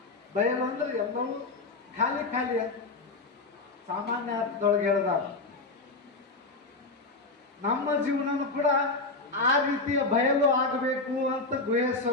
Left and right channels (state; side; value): quieter; right; 3.5 dB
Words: ಬಯಲು ಅಂದ್ರೆ ಎಲ್ಲವೂ ಖಾಲಿ ಖಾಲಿ ಅಂತ ಸಾಮಾನ್ಯ ಅರ್ಥದೊಳಗೆ ಹೇಳಿದಾಗ, ನಮ್ಮ ಜೀವನನೂ ಕೂಡ ಆ ರೀತಿಯ ಬಯಲು ಆಗಬೇಕು ಅಂತ